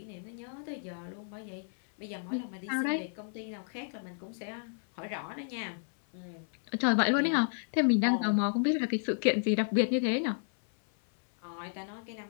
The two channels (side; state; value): right; silent; 56 dB below the other